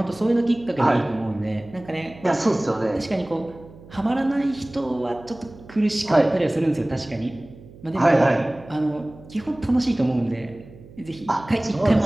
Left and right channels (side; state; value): right; noise; hum, 20 dB below the sound